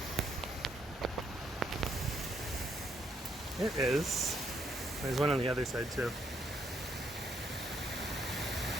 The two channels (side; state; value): both; normal; correlation 0.74